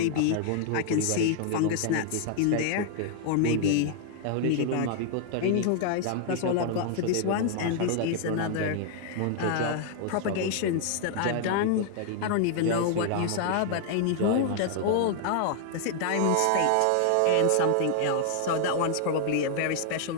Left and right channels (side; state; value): both; different; correlation -0.01